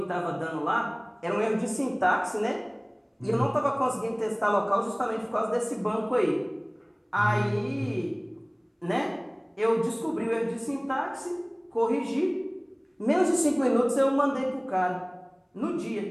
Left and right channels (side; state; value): both; identical; correlation 1.00